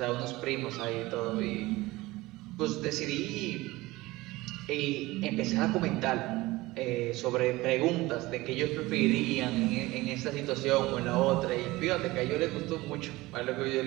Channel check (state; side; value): quieter; left; 19.8 dB